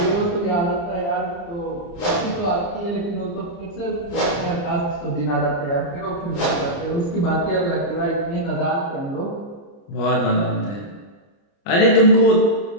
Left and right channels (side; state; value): right; late; 29 ms